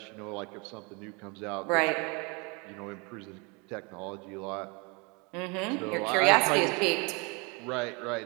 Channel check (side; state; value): left; quieter; 30.1 dB